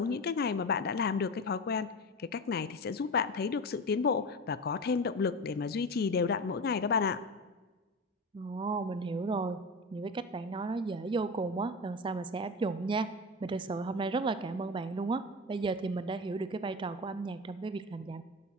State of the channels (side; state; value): both; normal; correlation 0.26